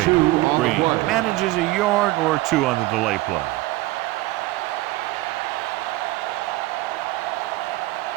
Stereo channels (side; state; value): left; quieter; 19.0 dB